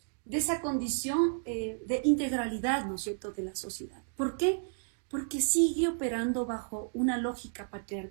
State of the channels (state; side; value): silent; left; digital silence